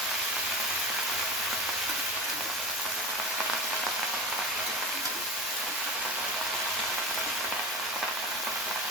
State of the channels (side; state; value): both; normal; correlation 0.28